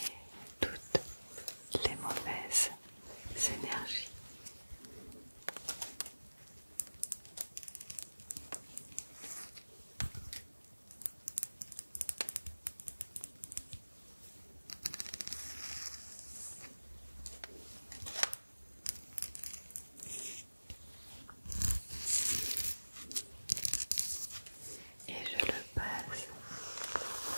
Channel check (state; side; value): inverted; both; correlation -1.00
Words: toutes les mauvaises énergies. Et je le passe